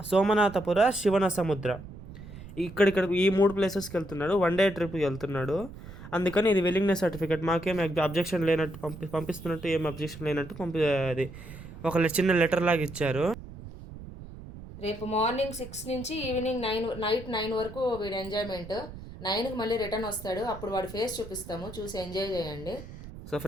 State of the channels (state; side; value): noise; right; rumble, 14 dB below the sound